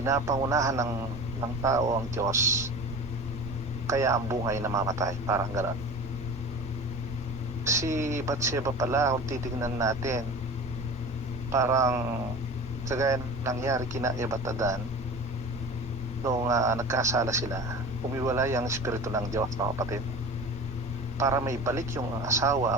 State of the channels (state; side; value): normal; both; correlation 0.35